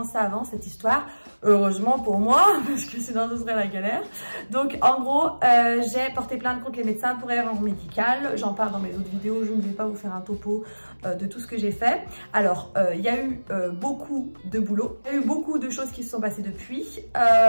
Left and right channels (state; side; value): inverted; both; correlation -1.00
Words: ça avance cette histoire. Heureusement pour moi, parce que sinon ce serait la galère. Donc en gros, j'ai porté plainte contre les médecins pour erreur médicale. J'en parle dans mes autres vidéos, je ne vais pas vous faire un topo de tout ce que j'ai fait. Alors, il y a eu beaucoup de boulot, il y a eu beaucoup de choses qui se sont passées depuis.